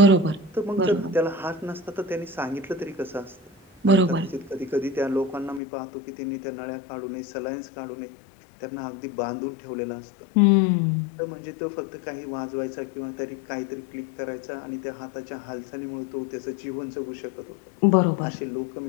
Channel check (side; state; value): right; drops out; at 5.6 s